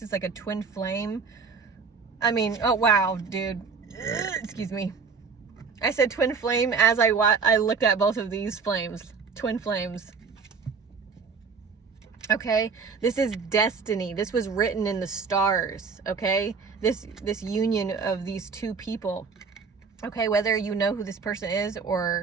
is like a twin flame. I mean, oh wow, dude. Excuse me. I said twin flame as I looked at both of these flames. Twin flames. Okay, this is destiny. This was written in the stars. Okay, this union of these two people. Okay, whether you know who this person is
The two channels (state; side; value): quieter; left; 5.3 dB